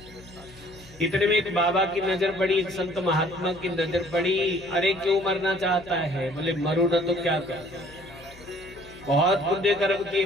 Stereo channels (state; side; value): noise; left; hum, 22 dB below the sound